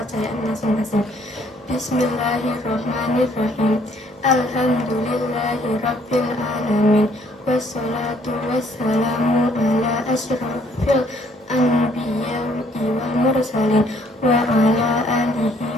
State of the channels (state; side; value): normal; both; correlation 0.63